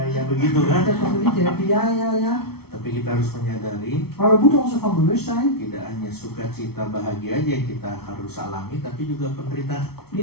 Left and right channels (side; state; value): right; late; 0.95 ms